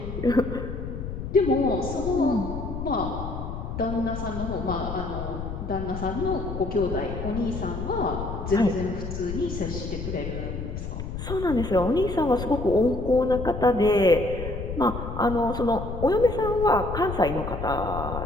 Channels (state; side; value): noise; left; rumble, 6 dB below the sound